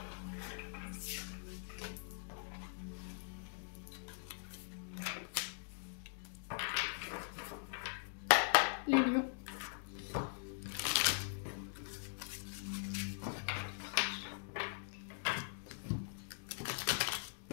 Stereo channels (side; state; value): right; silent; digital silence